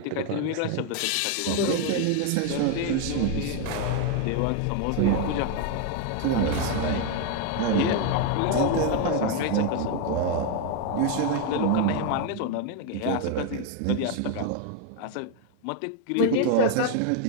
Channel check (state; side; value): different; both; correlation 0.01